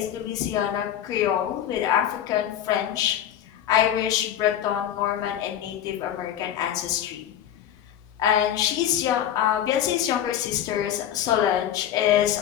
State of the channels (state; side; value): quieter; right; 10.6 dB